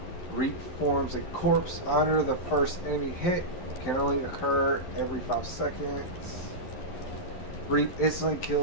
Reap forms a corpse under the first enemy hit. Can only occur every 5 seconds. Reap instantly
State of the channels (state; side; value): late; right; 11 ms